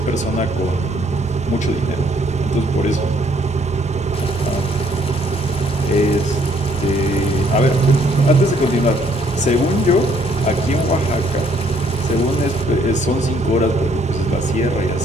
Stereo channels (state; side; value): normal; both; correlation 0.66